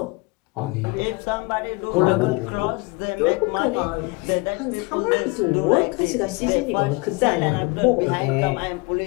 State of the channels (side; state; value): right; quieter; 26.2 dB